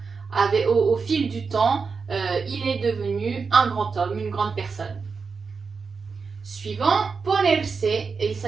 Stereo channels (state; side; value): quieter; left; 5.1 dB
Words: Au fil du temps, il est devenu un grand homme, une grande personne. Suivant, ponerse, il